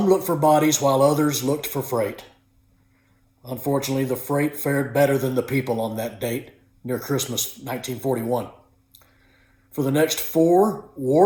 looked for bodies while others looked for freight. Unfortunately, the freight fared better than the people on that date near Christmas 1941. For the next 4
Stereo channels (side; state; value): both; identical; correlation 1.00